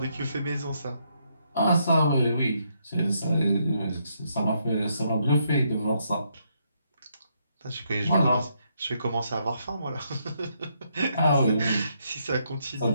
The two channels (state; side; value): inverted; both; correlation -0.75